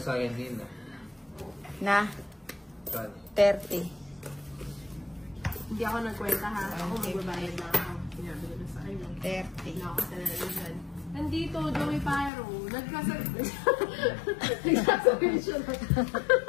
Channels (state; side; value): drops out; right; at 12.3 s